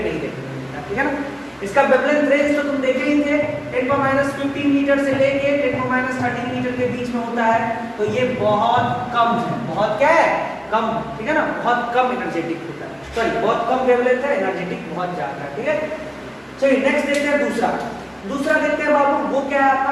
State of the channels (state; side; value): identical; both; correlation 1.00